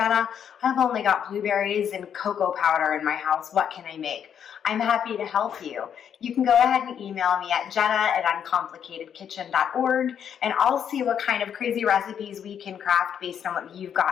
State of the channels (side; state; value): right; quieter; 8.5 dB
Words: I've only got blueberries and cocoa powder in my house, what can I make? I'm happy to help you. You can go ahead and email me at jenna@uncomplicatedkitchen.org, and I'll see what kind of crazy recipes we can craft based on what you've